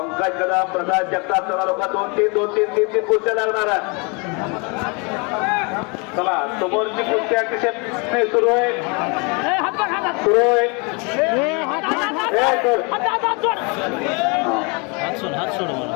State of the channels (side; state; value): right; quieter; 31.5 dB